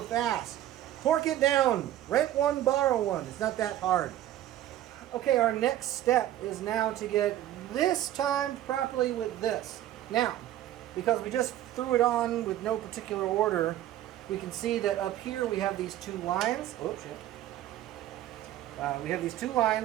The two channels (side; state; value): left; quieter; 13.0 dB